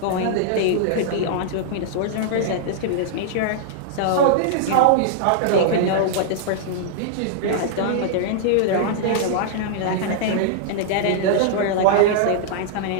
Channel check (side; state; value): both; different; correlation -0.01